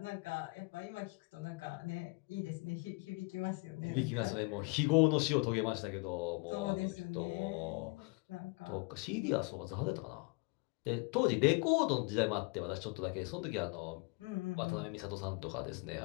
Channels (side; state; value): right; quieter; 28.9 dB